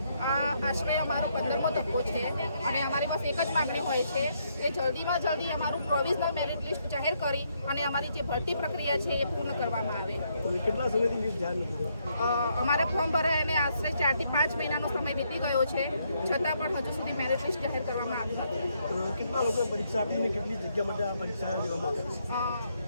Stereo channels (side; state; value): both; inverted; correlation -0.74